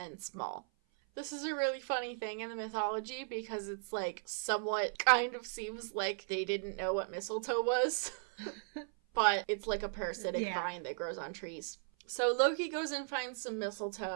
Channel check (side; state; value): left; silent; 53 dB below the other